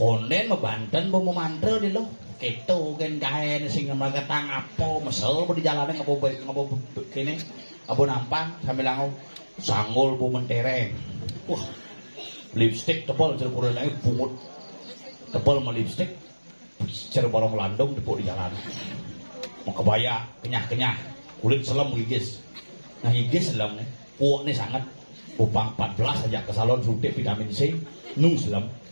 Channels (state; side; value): inverted; both; correlation -1.00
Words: mebanten mau memantra di lo keto kan gaen sing mereka tang apa mesel di jalannya ngabo kene abo nampang sambil langau sanggul bu mentereng wah lipstick tebal cerpura lagi bungut tebal sama lipstick cerpura melandung tepuk di jalan mau kebaya kenyah kulit selam gigis nah gigis selam nih puak nih sangat upang 14 aja ke salon suntik vitamin C nung selam